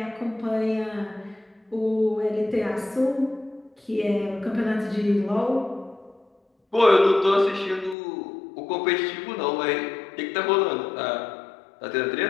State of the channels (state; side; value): drops out; right; at 8.0 s